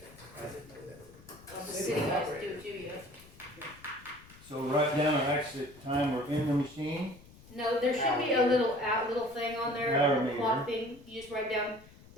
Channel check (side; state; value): left; noise; rumble, 22 dB below the sound